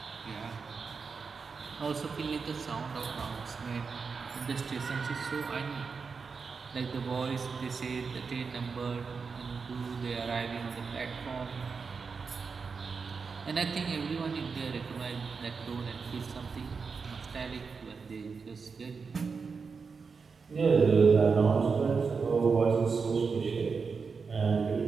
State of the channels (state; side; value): quieter; left; 5.2 dB